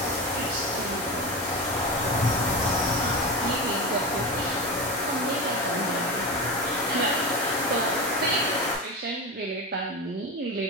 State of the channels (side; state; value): both; normal; correlation 0.22